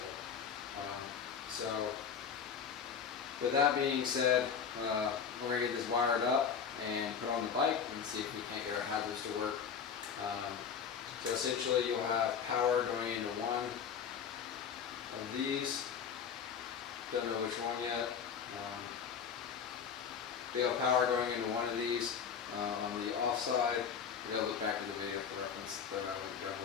So with that being said, we're gonna get this wired up and put on the bike and see if we can't get our hazards to work. So essentially you'll have power going into one of these. Don't know which one yet. We have power going into one of these on the off side. We gotta look back at the video for reference that I linked down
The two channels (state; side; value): quieter; right; 7.0 dB